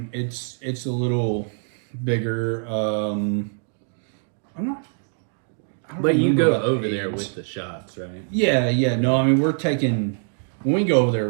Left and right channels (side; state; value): left; silent; 63 dB below the other